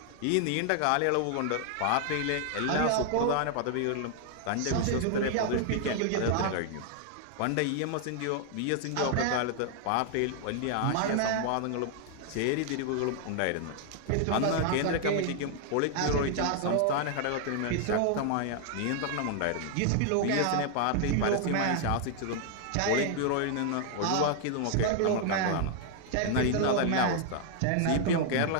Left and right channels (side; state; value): both; different; correlation 0.00